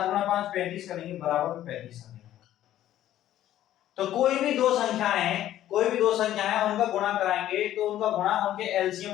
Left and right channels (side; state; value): right; quieter; 12.7 dB